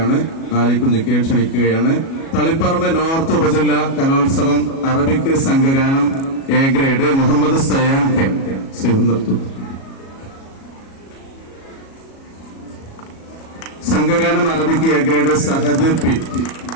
ആലിക്കുഞ്ഞിക്കയെ ക്ഷണിക്കുകയാണ്. തളിപ്പറമ്പ് നോർത്ത് ഉപജില്ല കലോത്സവം അറബിക് സംഘഗാനം A grade Muhammad Sayan K. സംഘഗാനം Arabic A grade Sahad P.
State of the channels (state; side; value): late; right; 37 ms